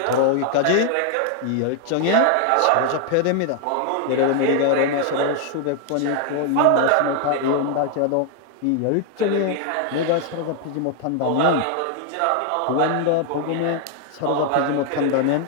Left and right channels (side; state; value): both; different; correlation 0.00